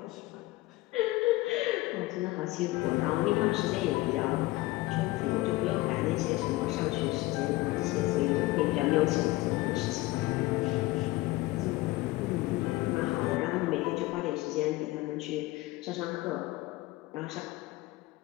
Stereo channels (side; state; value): right; quieter; 19.6 dB